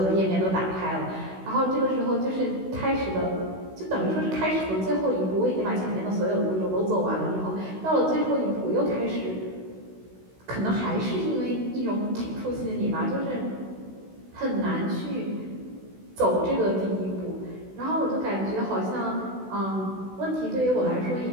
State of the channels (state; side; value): late; left; 16 ms